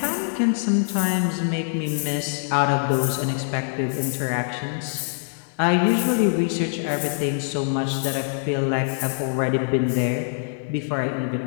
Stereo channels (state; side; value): silent; right; digital silence